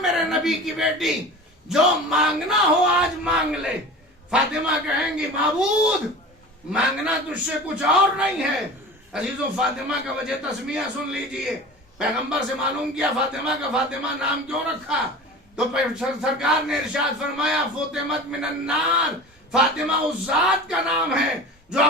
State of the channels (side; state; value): both; normal; correlation 0.35